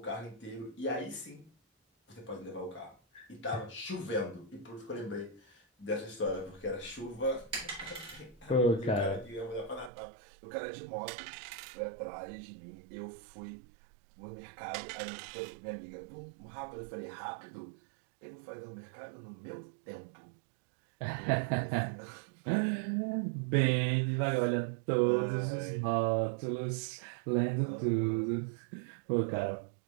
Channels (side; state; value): left; drops out; at 9.9 s